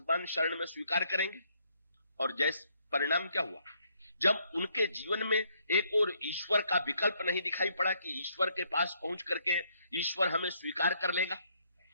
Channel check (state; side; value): inverted; both; correlation -0.71